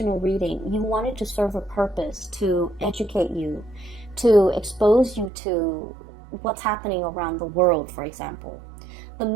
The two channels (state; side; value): drops out; left; at 5.3 s